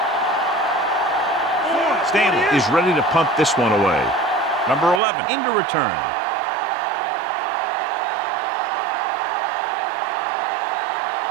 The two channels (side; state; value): left; drops out; at 5.0 s